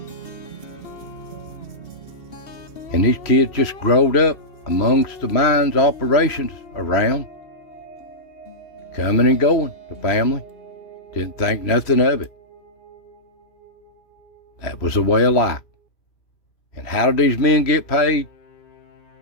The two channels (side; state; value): right; late; 3.0 ms